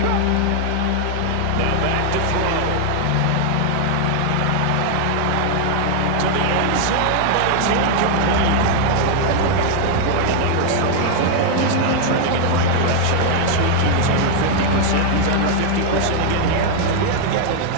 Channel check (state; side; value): different; both; correlation 0.00